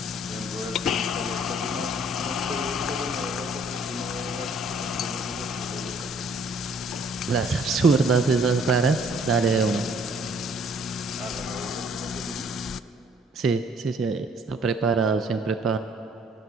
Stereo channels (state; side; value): normal; both; correlation 0.60